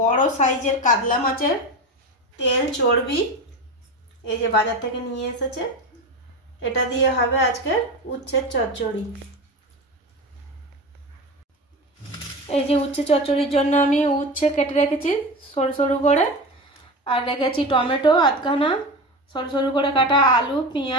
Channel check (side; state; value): both; normal; correlation 0.26